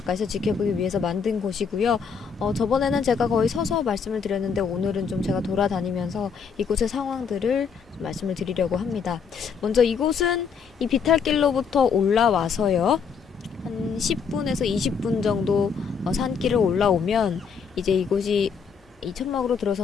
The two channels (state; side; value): quieter; right; 6.2 dB